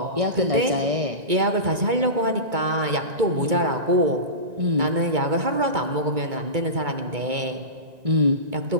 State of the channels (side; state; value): left; late; 1.9 ms